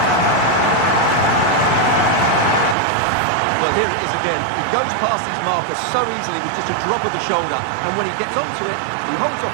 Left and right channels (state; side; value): drops out; left; at 2.8 s